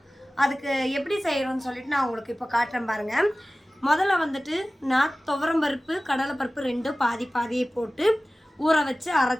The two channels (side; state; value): both; normal; correlation 0.97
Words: அதுக்கு எப்படி செய்கிறோன்னு சொல்லிட்டு நான் உங்களுக்கு இப்போ காட்டுறேன் பாருங்கள். முதல்ல வந்துட்டு நான் துவரம்பருப்பு கடலைப்பருப்பு ரெண்டும் பாதி பாதியை போட்டு ஊற வச்சு